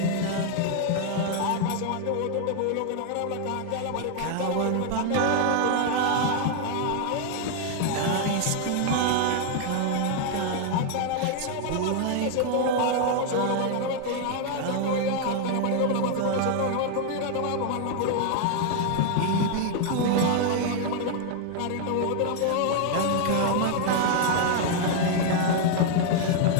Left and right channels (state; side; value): different; both; correlation 0.00